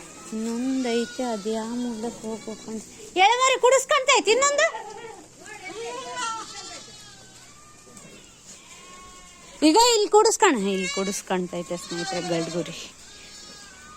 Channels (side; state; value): both; identical; correlation 1.00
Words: ಇನ್ನೊಂದು ಐತೆ, ಅದು ಯಾವ ಮೂಲಕ್ಕೆ ಹೋಗ್ಬೇಕಂತ ಎಳೆಮರಿ ಕುಡಿಸ್ಕೊಂತೈತಿ ಇನ್ನೊಂದು. ಈಗ ಇಲ್ಲಿ ಕುಡಿಸ್ಕೊಂತೈತೆ ಸ್ನೇಹಿತರೆ ಗಡ್ಗುರಿ.